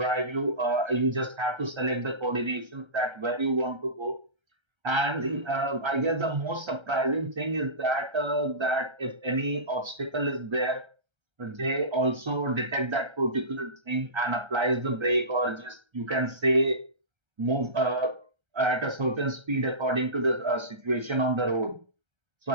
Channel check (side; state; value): left; late; 1.3 ms